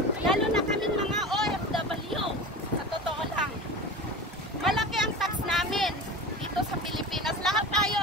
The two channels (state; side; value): normal; both; correlation 0.31